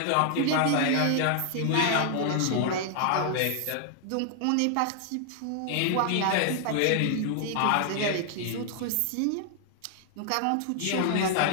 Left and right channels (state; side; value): different; both; correlation 0.00